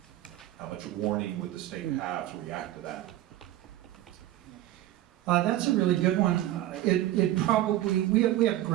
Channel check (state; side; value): quieter; left; 14.4 dB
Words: How much warning would the state have to react to that? That's a really good one. It probably, we have